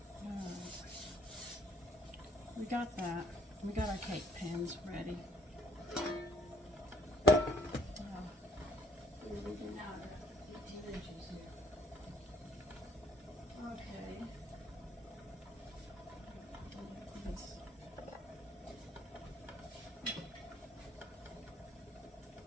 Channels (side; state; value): both; normal; correlation 0.63